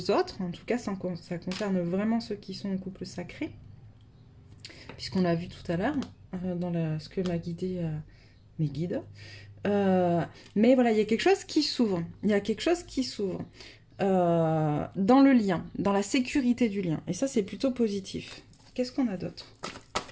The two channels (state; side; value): identical; both; correlation 1.00